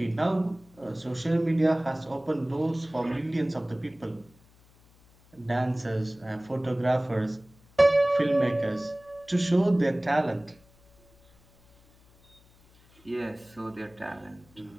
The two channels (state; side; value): noise; left; hum, 29 dB below the sound